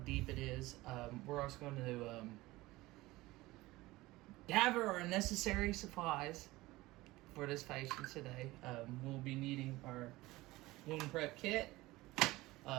it is. We're also going to gather our necessary supplies for this patient today. We'll be needing our wound prep kit.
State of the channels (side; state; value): left; quieter; 19.3 dB